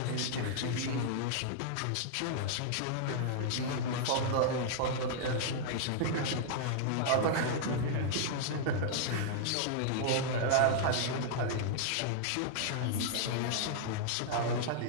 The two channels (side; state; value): both; different; correlation -0.01